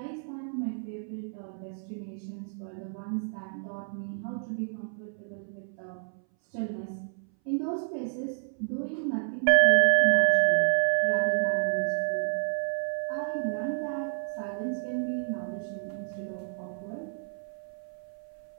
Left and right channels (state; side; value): silent; left; 58 dB below the other